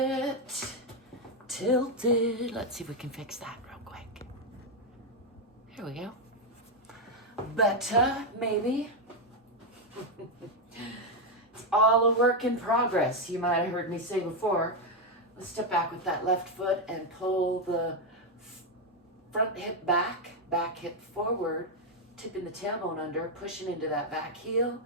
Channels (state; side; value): normal; both; correlation 0.03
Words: tilted. Let's see if we can fix that real quick. Here we go. Better, maybe. It's all a work in progress. You might have heard me say before. Let's step back with that left foot and pull the front hip back, back hip forward, tipping the tailbone under, pushing into that back heel.